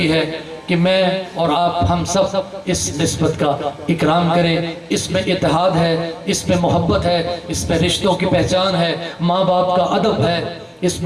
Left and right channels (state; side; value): identical; both; correlation 1.00